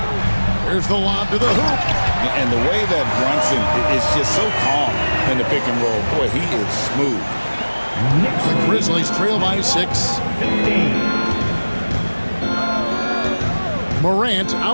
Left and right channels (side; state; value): both; inverted; correlation -1.00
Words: Here's the lob to the hoop. And the way that Brunson is just so calm in the pick and roll, boy, he is smooth. The Grizzlies trail by 6. 15. Morant